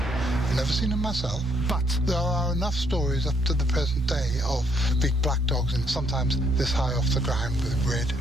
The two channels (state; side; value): normal; both; correlation 0.70